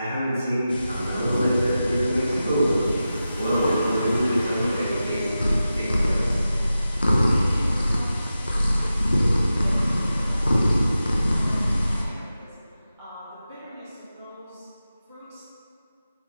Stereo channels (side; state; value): both; inverted; correlation -0.93